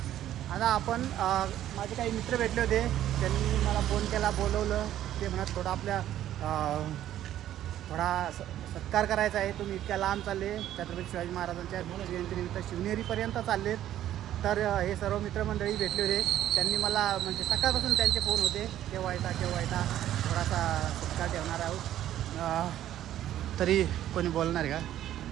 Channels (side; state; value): left; quieter; 12.2 dB